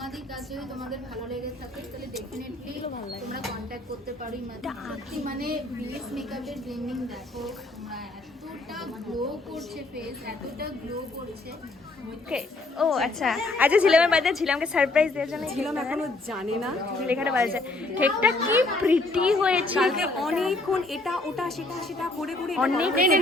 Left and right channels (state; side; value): quieter; right; 3.0 dB